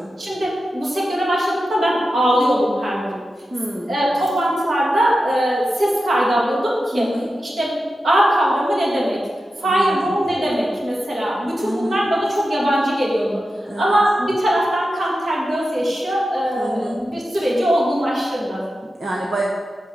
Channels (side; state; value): both; normal; correlation 0.91